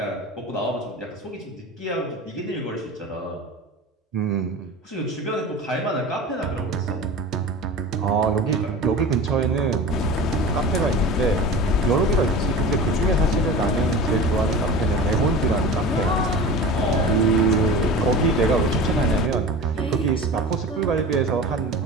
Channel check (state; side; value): normal; both; correlation 0.34